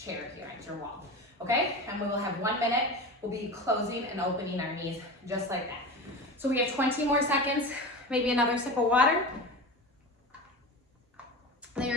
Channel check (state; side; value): normal; both; correlation 0.28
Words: here at your wall, okay? And we will have 1 minute. We'll be closing and opening our knees just like that. So we have 20 more seconds, maybe another sip of water. Then you're